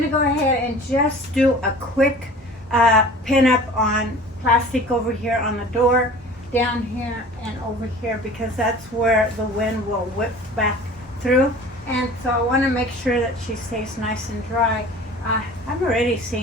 to go ahead and just do a quick pin up on plastic over here on the door, down here and over here, because that's where the wind will whip back through. And so I want to make sure that she stays nice and dry. I've already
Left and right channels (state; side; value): normal; both; correlation 0.43